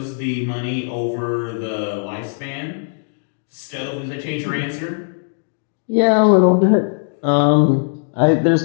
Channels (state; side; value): silent; right; digital silence